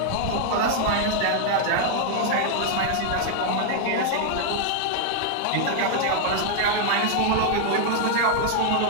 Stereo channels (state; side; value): different; both; correlation 0.00